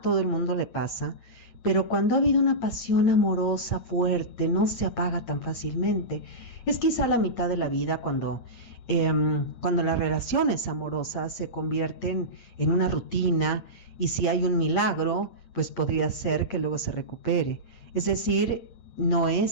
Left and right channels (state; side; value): late; right; 8.7 ms